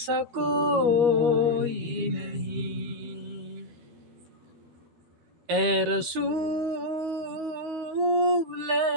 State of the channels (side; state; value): left; late; 13 ms